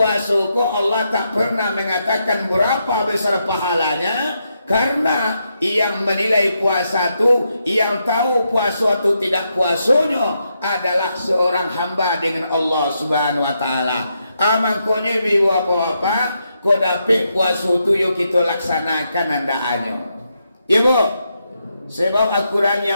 kok Allah tak pernah mengatakan berapa besar pahalanya. Karena yang menilai puasa itu, yang tahu puasa itu tidak puasanya adalah seorang hamba dengan Allah Subhanahu wa ta'ala. Amangkonya ibu apa-apa, kau dapat puasa itu yuk kita laksanakan andaannya. Ibu, sebab Al-Quran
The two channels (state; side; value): inverted; both; correlation -0.82